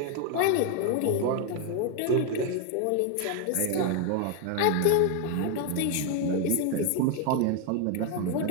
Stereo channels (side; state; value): both; different; correlation 0.01